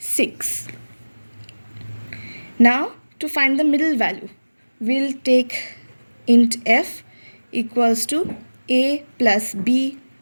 Now to find the middle value, we'll take int f equals to A plus B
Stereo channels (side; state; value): both; inverted; correlation -1.00